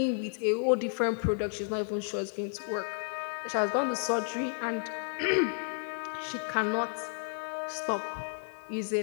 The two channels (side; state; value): right; silent; 56 dB below the other